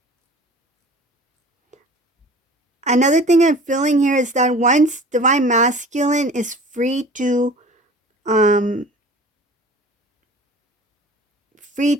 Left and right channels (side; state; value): both; normal; correlation 0.43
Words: Another thing I'm feeling here is that once divine masculine is um free